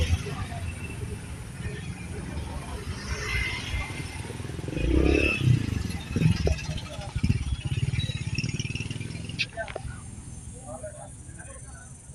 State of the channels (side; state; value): both; identical; correlation 1.00